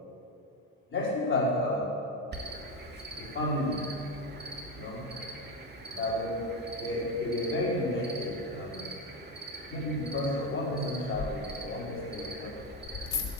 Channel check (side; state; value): both; normal; correlation 0.13